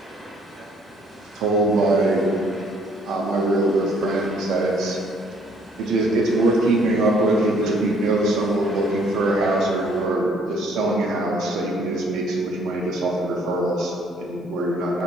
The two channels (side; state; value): both; normal; correlation 0.62